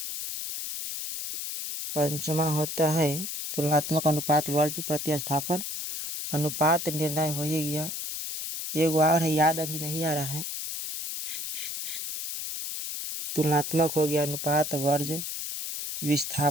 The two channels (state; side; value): noise; left; hiss, 5 dB below the sound